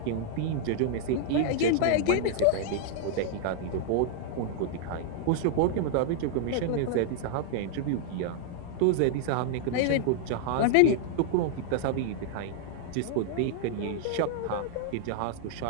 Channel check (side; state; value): both; different; correlation -0.01